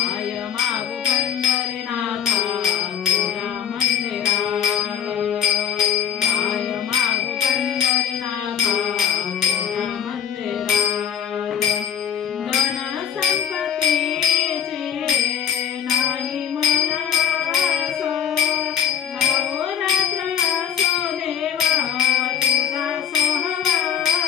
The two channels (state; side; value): quieter; right; 9.1 dB